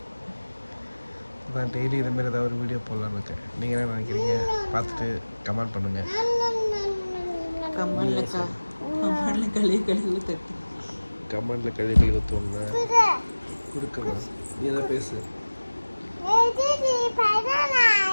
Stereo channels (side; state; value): both; inverted; correlation -1.00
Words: நான் டெய்லி இதுமாரி ஏதாவது ஒரு வீடியோ போடலான்னு இருக்கேன். நீங்கள் என்ன நினைக்கிறீங்க? பார்த்துட்டு கமெண்ட் பண்ணுங்கள். கமெண்ட்ல கழுவி ஊற்று. கமெண்டில் கழுவி ஊற்றுவோங்க. கொடுக்கலாம். நீ எதாவது பேசு.